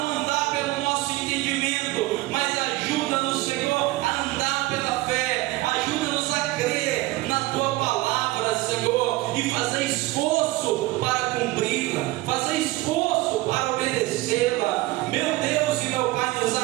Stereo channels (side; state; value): left; quieter; 19.4 dB